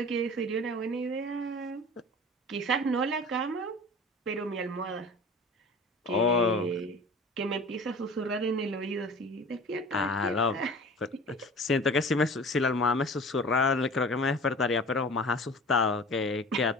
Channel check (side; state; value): both; normal; correlation 0.41